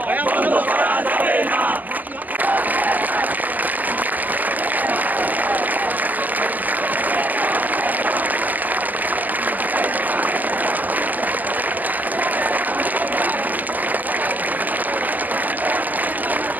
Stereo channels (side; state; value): left; late; 0.082 ms